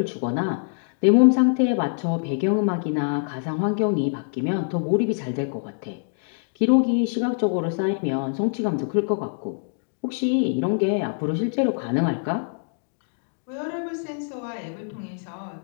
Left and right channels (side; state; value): right; silent; digital silence